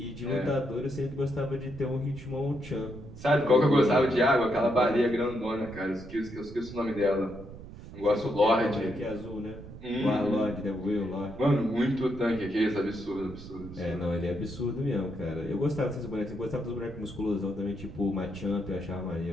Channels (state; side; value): noise; right; rumble, 14 dB below the sound